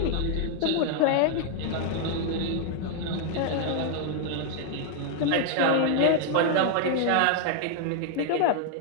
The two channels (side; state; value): both; different; correlation 0.00